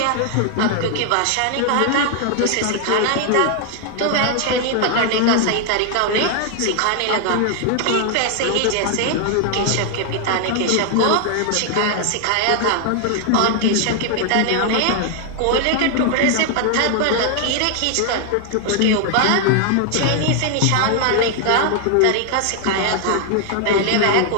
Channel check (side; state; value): both; different; correlation 0.00